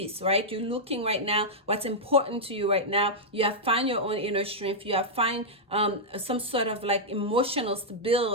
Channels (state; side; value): normal; both; correlation -0.07